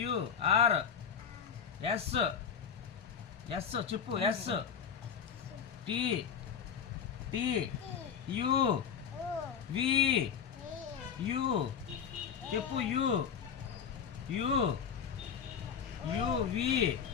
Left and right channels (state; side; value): quieter; right; 7.4 dB